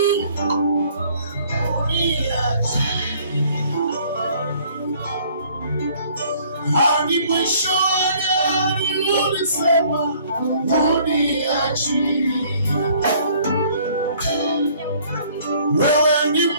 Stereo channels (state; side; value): inverted; both; correlation -0.58